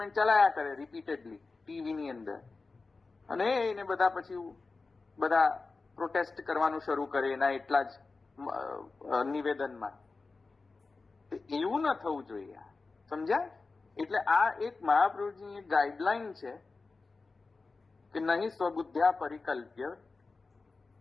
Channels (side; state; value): right; quieter; 3.9 dB